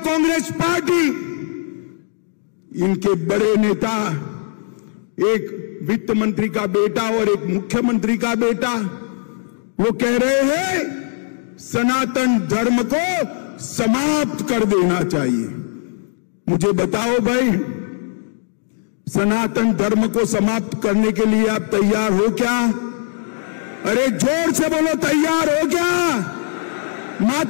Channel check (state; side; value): silent; right; 66 dB below the other